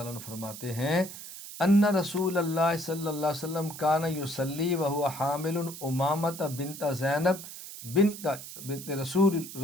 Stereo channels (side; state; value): right; noise; hiss, 12 dB below the sound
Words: عنہ فرماتے ہیں ان رسول اللہ صلی اللہ علیہ وسلم کان یصلی وهو حامل امامۃ بنت زینب بنت رسول